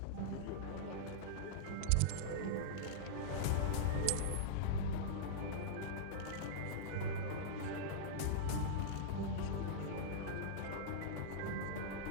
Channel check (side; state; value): both; different; correlation -0.02